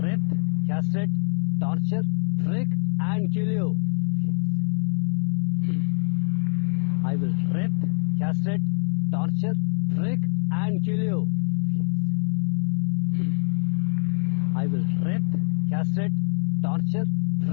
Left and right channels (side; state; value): right; silent; 60 dB below the other